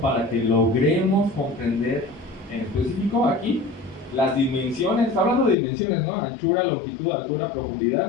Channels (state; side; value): drops out; right; at 5.6 s